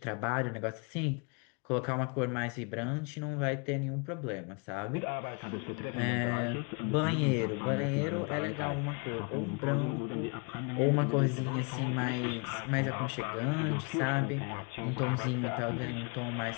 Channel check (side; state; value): right; quieter; 34.6 dB